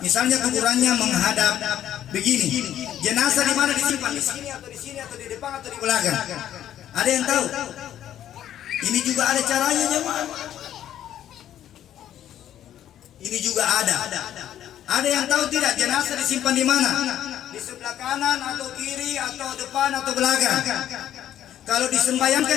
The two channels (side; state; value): right; quieter; 11.2 dB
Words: Misalnya kuburannya menghadap begini. Jenazah di mana disimpan? Di sini atau di sini atau di depan atau di belakang? Ada yang tahu? Ini juga ada caranya jemaah. Ini juga ada. Ada yang tahu tidak jenazah disimpan di mana? Di sebelah kanan atau kiri atau depan atau belakang? Kalau